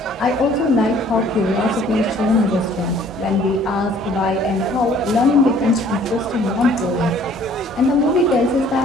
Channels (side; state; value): both; normal; correlation 0.56